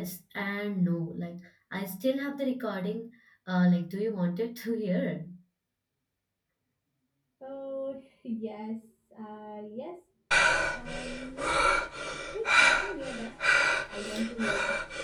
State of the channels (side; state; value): both; identical; correlation 1.00